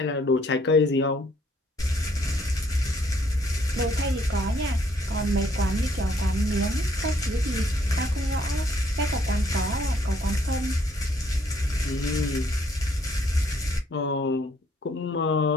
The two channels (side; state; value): both; normal; correlation 0.66